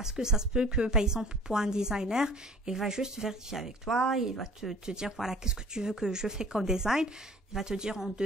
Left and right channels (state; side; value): normal; both; correlation 0.49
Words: que ça se peut que, par exemple, pour un designer, il va juste vérifier avec toi, il va te dire, voilà, qu'est-ce que tu veux que je fais comme design, il va te dire en